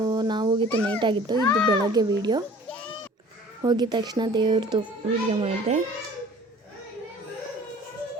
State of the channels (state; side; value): normal; both; correlation 0.48